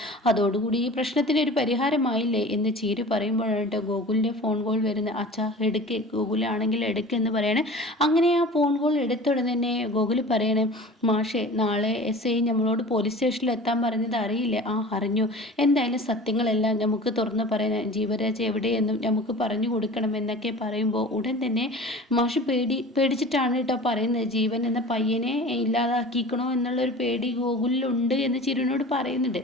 അതോടുകൂടി ഈ പ്രശ്നത്തിന് ഒരു പരിഹാരമായില്ലേ എന്ന് ചീരു പറയുമ്പോഴാണ് ഗോകുലിൻ്റെ ഫോൺ കോൾ വരുന്നത്. അച്ഛാ എടുക്ക്, ഗോകുലാണെങ്കിൽ എടുക്കെന്ന് പറയണേ. അങ്ങനെ ആ ഫോൺ കോൾ എടുത്തുടനെ തന്നെ ഗോകുൽ പറയണേ, മാഷേ നാളെ SI നമ്മളോട് പോലീസ് സ്റ്റേഷനിൽ എത്താൻ പറഞ്ഞത് അറിയില്ലേ? ആ അറിഞ്ഞു, എന്തായാലും സത്യങ്ങളെല്ലാം നമുക്ക് തുറന്ന് പറയാൻ, ജീവരാജ് എവിടെയെന്നും നമുക്ക് പറഞ്ഞു കൊടുക്കണം എന്നൊക്കെ പറയുമ്പോൾ ഉടൻ തന്നെ മാഷ് പേടിച്ചിട്ടാണ് കേട്ടോ പറയുന്നത്. ജീവൻ എന്ന പയ്യനെ ഇല്ലാതാക്കിക്കണോ എന്നുള്ളൊരു പേടി ഗോകുലിലുണ്ട് എന്ന് ചിരുവിനോട് പറയുന്നുണ്ട്.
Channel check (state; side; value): normal; both; correlation 0.39